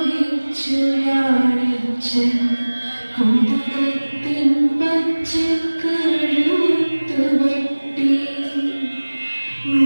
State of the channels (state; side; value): inverted; both; correlation -1.00